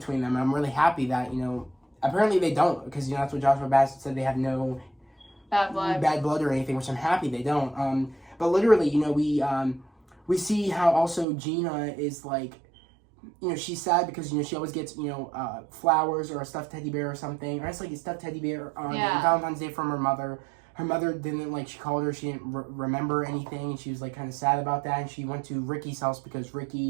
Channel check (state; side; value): drops out; left; at 11.2 s